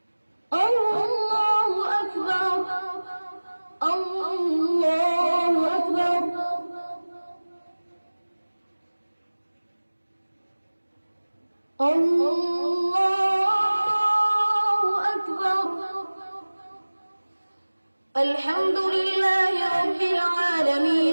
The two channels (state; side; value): inverted; both; correlation -1.00